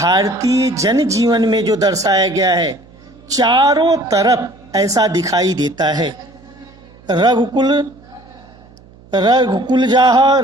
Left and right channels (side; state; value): right; noise; hum, 25 dB below the sound